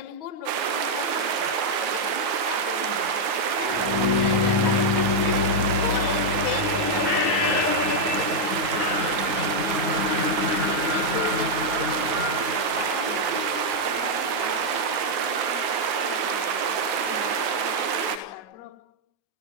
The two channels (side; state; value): left; late; 9.4 ms